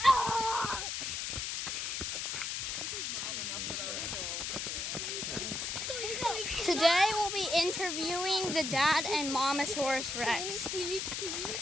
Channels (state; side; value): noise; left; hiss, 2 dB below the sound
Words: Oh! Today we'll be interviewing the dad and Momosaurus Rex.